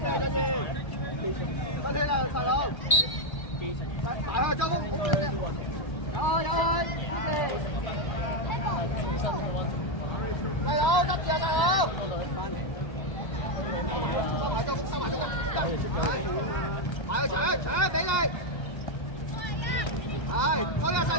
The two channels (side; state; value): right; late; 1.3 ms